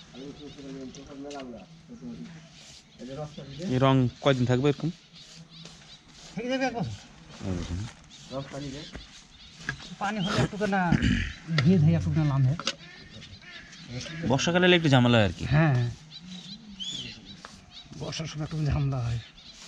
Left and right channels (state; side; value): identical; both; correlation 1.00